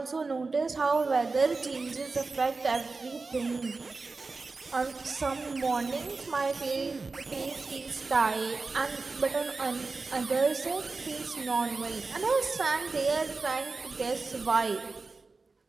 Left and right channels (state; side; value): quieter; left; 3.9 dB